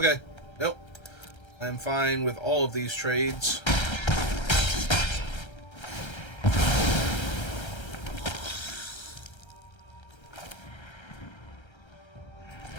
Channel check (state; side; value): late; right; 1.3 ms